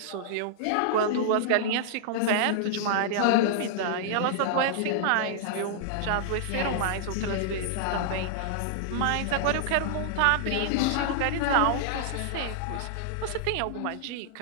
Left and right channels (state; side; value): different; both; correlation -0.01